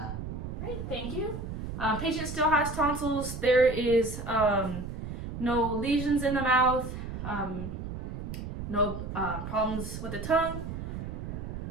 Great, thank you. Patient still has tonsils. There is no lesions in the mouth, no problems with the tongue.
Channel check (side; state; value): right; noise; rumble, 6 dB below the sound